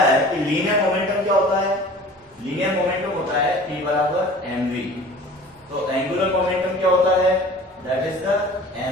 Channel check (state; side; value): normal; both; correlation 0.44